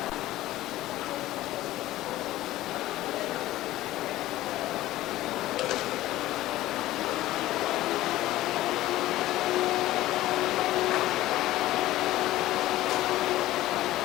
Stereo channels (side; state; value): right; quieter; 15.7 dB